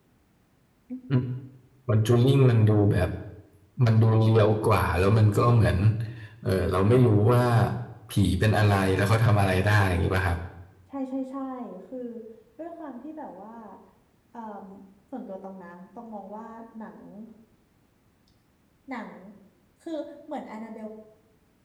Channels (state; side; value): identical; both; correlation 1.00